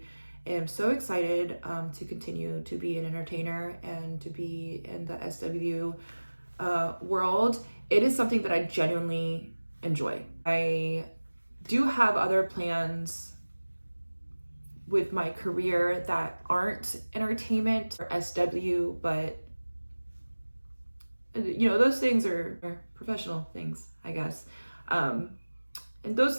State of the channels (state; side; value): inverted; both; correlation -1.00